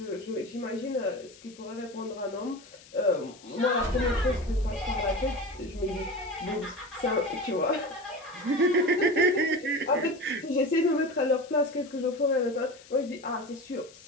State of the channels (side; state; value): left; noise; hiss, 22 dB below the sound